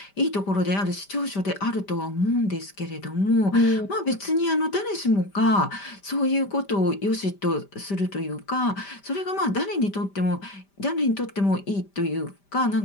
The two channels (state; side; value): late; right; 5.1 ms